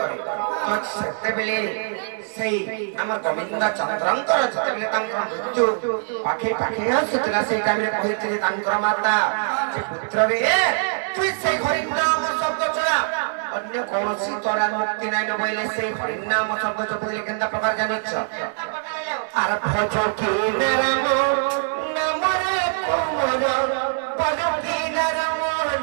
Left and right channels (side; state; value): left; silent; 63 dB below the other